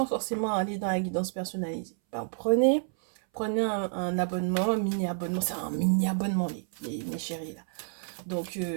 forcément aller dans la guidance personnalisée. Ben, prenez un abonnement, un mini-abonnement. C'est un mini-abonnement, mes chéris, là. Donc,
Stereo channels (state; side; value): silent; left; 58 dB below the other